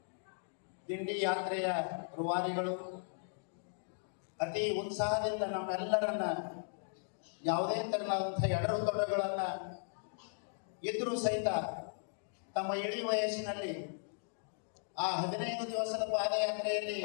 ದಿಂಡಿ ಯಾತ್ರೆಯ ರೂವಾರಿಗಳು ಅತಿ ಉತ್ಸಾಹದಿಂದ ನಮ್ಮೆಲ್ಲರನ್ನ ಯಾವುದೇ ತೆರನಾದಂಥ ಎಡರು ತೊಡರುಗಳನ್ನು ಇದ್ರೂ ಸಹಿತ ತಮ್ಮ ಇಳಿ ವಯಸ್ಸಿನಲ್ಲಿ ಆ 15 ದಿವಸದ ಪಾದಯಾತ್ರೆಯಲ್ಲಿ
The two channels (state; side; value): silent; right; digital silence